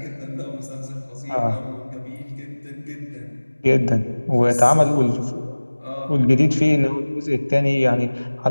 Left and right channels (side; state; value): both; inverted; correlation -1.00